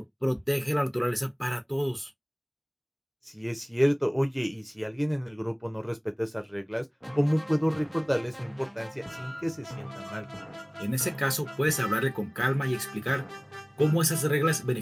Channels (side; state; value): both; identical; correlation 1.00